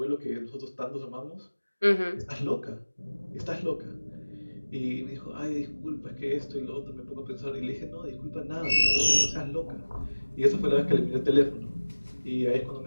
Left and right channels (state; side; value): inverted; both; correlation -1.00